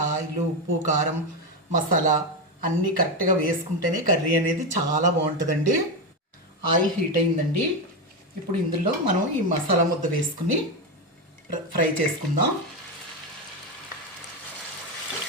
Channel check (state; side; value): normal; both; correlation 0.12